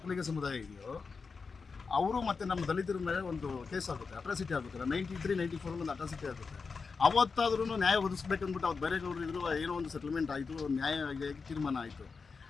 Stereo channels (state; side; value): quieter; right; 4.9 dB